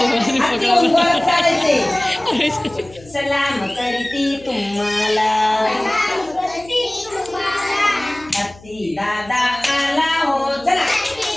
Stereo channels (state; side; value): noise; left; hum, 23 dB below the sound